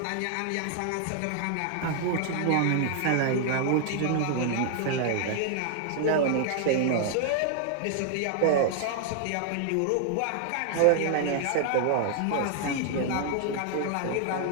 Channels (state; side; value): different; both; correlation 0.00